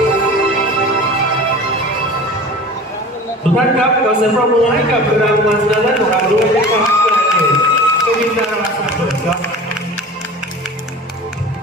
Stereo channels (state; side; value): normal; both; correlation 0.38